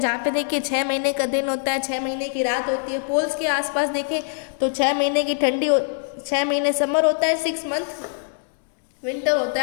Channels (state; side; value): silent; right; digital silence